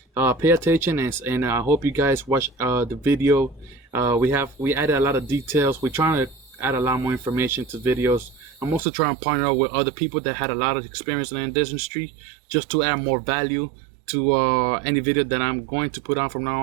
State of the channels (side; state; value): left; drops out; at 8.8 s